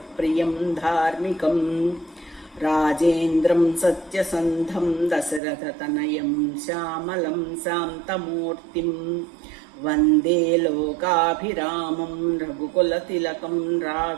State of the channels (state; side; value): drops out; left; at 5.4 s